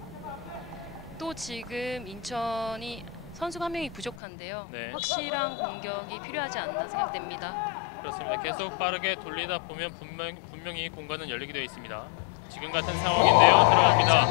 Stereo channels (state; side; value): drops out; right; at 4.2 s